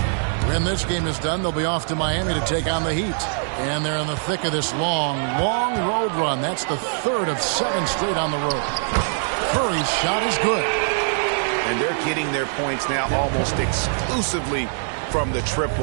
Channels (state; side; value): silent; left; digital silence